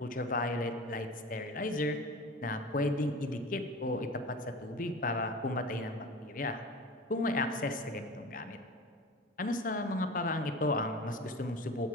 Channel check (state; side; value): normal; both; correlation 0.35